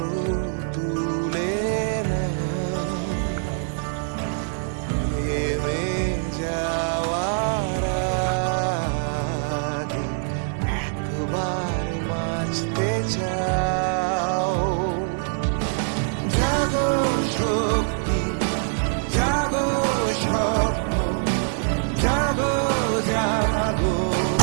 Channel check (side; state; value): left; silent; digital silence